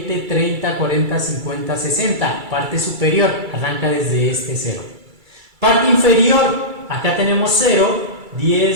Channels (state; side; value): late; left; 2.3 ms